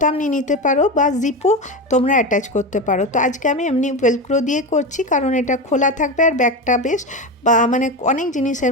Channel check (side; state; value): both; normal; correlation 0.20